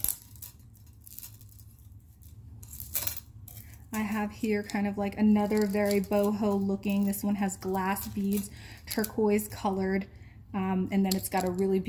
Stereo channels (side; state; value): both; identical; correlation 1.00